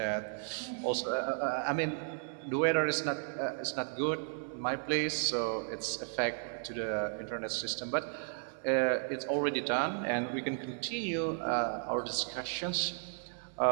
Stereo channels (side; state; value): left; silent; digital silence